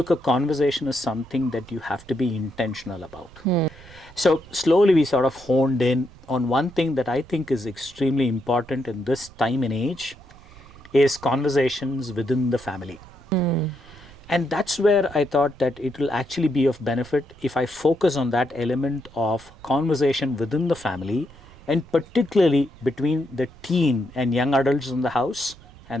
a conversation is something that you have to be intentional about. So slowly we sort of honed in on one thing that I think is extremely important in this time and age is conversations within the family. And that's where I thought that it will actually be of benefit if I focus on that element of conversation within the family, and particularly between the teen and young adults in the house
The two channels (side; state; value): right; noise; rumble, 22 dB below the sound